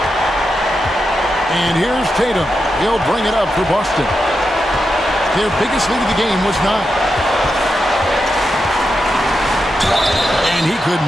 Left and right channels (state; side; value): normal; both; correlation 0.87